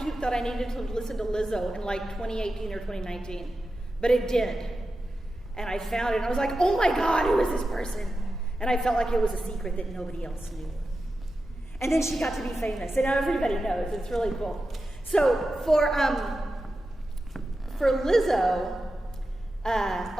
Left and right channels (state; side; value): normal; both; correlation 0.92